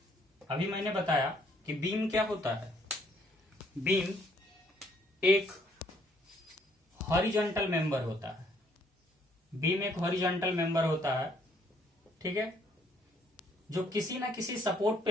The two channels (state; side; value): normal; both; correlation 0.66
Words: अभी मैंने बताया कि बीम क्या होता है। बीम एक हॉरिजॉन्टल मेंबर होता है। बीम एक हॉरिजॉन्टल मेंबर होता है, ठीक है, जो किसी ना किसी सपोर्ट